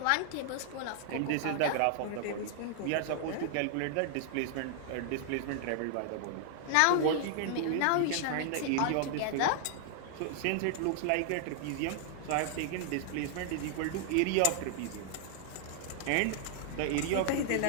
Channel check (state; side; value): different; both; correlation -0.01